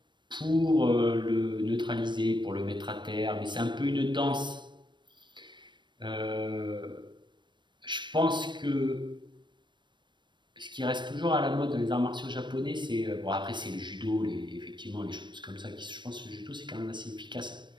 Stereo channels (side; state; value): left; late; 0.22 ms